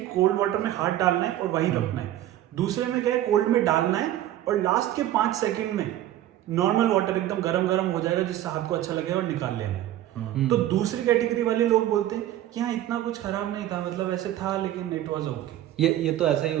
कोल्ड वाटर में हाथ डालना है और वहीं रखना है। दूसरे में क्या है, कोल्ड में डालना है और लास्ट के 5 सेकंड में नॉर्मल वाटर एकदम गरम हो जाएगा, जिससे हाथ को अच्छा लगेगा और निकाल लेना है। तो दूसरी कैटेगरी वाले लोग बोलते हैं कि हाँ इतना कुछ खराब नहीं था, मतलब ऐसे था लेकिन इट वाज ओके। ये तो ऐसा ही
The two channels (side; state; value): left; quieter; 13.0 dB